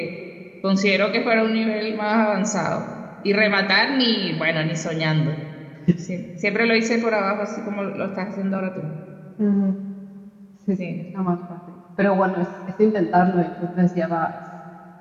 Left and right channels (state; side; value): identical; both; correlation 1.00